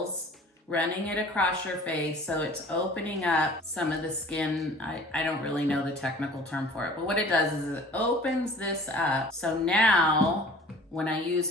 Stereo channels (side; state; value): both; normal; correlation 0.47